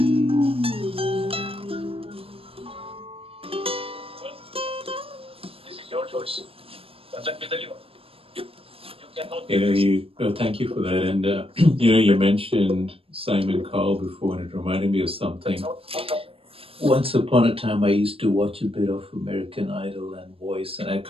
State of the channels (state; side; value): late; left; 0.27 ms